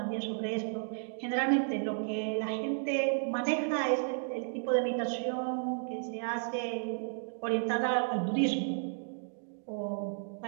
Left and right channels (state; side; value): silent; left; digital silence